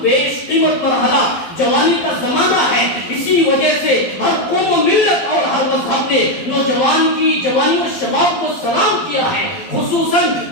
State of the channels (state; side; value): late; right; 11 ms